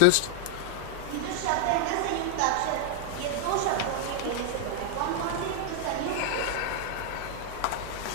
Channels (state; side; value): different; both; correlation 0.00